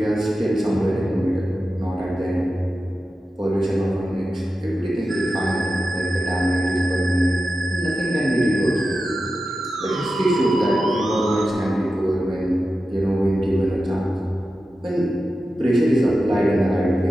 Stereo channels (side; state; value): both; normal; correlation 0.92